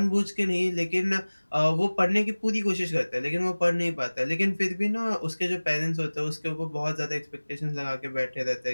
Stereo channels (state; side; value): inverted; both; correlation -1.00